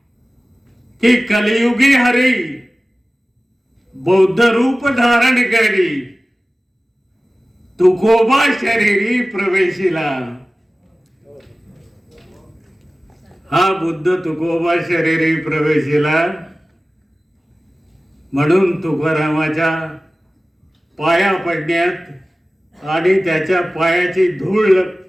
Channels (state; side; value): normal; both; correlation 0.96